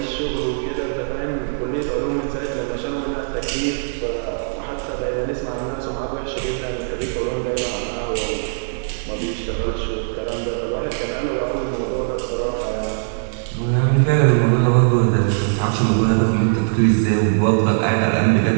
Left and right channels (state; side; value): silent; left; digital silence